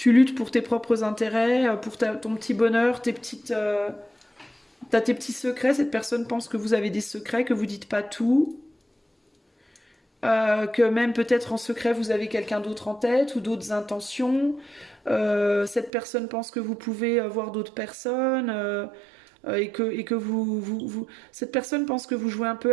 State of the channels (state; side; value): drops out; left; at 15.9 s